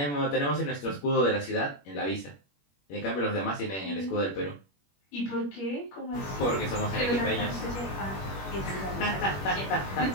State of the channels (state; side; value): late; right; 21 ms